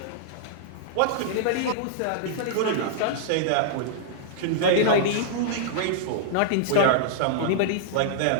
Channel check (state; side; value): different; both; correlation -0.01